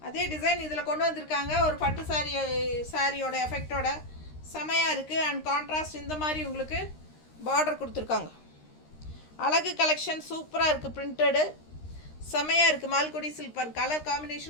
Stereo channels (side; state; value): right; late; 13 ms